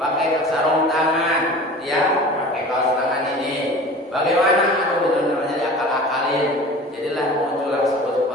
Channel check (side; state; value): both; normal; correlation 0.40